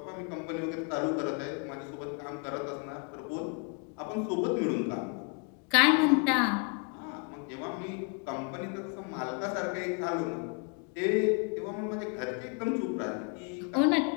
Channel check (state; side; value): quieter; right; 35.9 dB